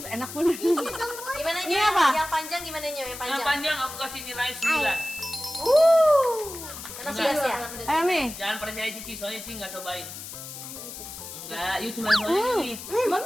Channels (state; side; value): noise; left; hiss, 11 dB below the sound